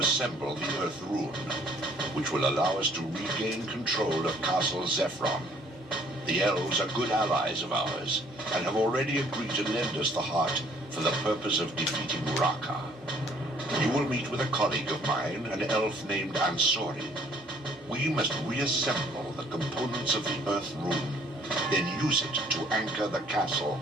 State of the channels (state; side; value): normal; both; correlation 0.60